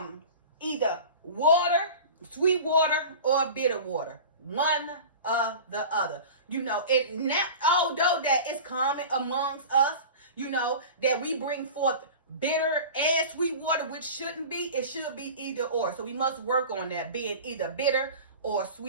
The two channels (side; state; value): both; inverted; correlation -0.35